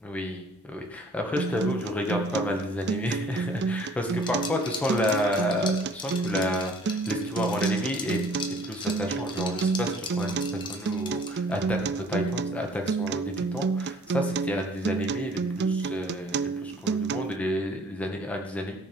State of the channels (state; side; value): normal; both; correlation 0.55